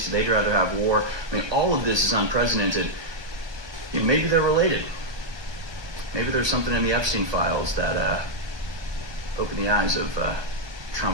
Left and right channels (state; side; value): late; left; 1.2 ms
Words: They'd rather have war. I mean, all of this is unprecedented. You know, maybe they're related. Maybe there's something in the Epstein files that opened the eyes of